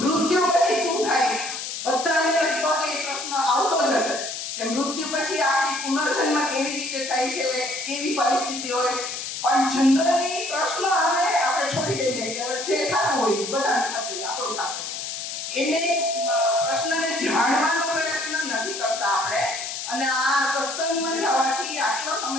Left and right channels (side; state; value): left; noise; hiss, 6 dB below the sound